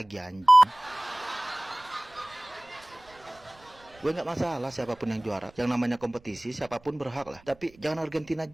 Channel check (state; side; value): noise; right; rumble, 27 dB below the sound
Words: anjing. Gue nggak masalah siapapun yang juara. Yang namanya kompetisi siapapun berhak lah. Tapi jangan Argentina